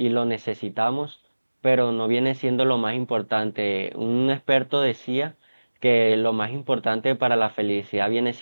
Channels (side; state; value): both; inverted; correlation -1.00